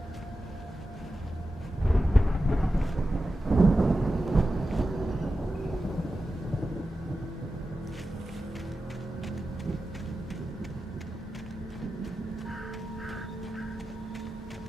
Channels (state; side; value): normal; both; correlation 0.92